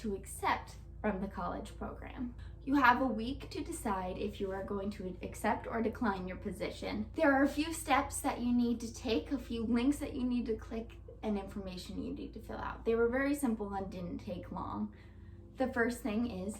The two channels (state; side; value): identical; both; correlation 1.00